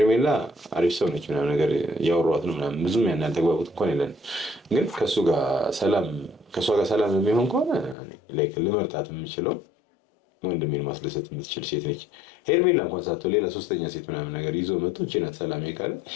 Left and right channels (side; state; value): right; drops out; at 8.0 s